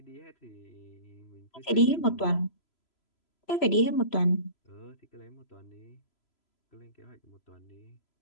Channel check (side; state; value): right; late; 3.0 ms